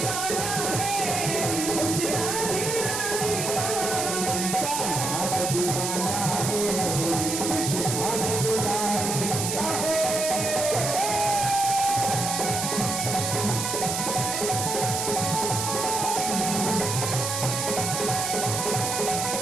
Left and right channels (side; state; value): right; noise; hiss, 2 dB below the sound